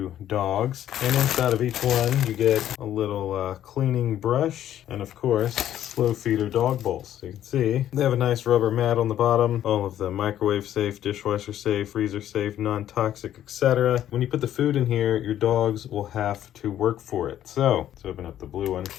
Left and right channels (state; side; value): quieter; right; 11.5 dB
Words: dogs. And inside of each one, you get a little cleaning brush and of course, slow feeder dog bowls. So you can see they have a nice rubber mat on the bottom. All of the microwave safe, dishwasher safe, freezer safe, non-toxic, etc. When you put the food in here, your dogs will have to work for it. So let's open up the blue one.